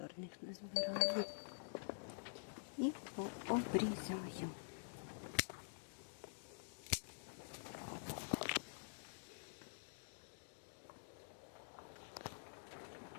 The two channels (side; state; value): right; silent; digital silence